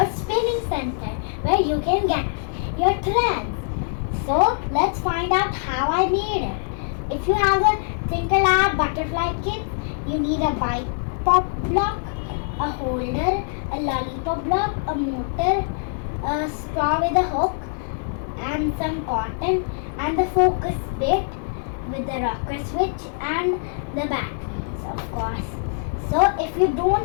spinning center where you can get your threads. So let's find out how I made it. If you have a Twinkle Lab butterfly kit, you need a bipop block, a holder, a lollipop block, a motor, a straw with a hook and some cotton and the focus bit with the rocker switch and the batteries, of course. So if you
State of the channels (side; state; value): right; silent; digital silence